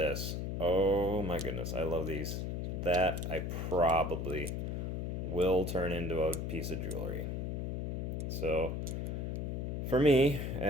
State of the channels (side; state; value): left; noise; hum, 2 dB below the sound